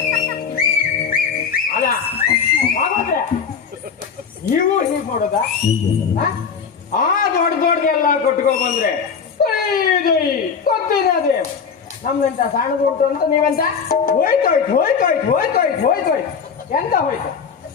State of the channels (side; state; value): right; quieter; 6.3 dB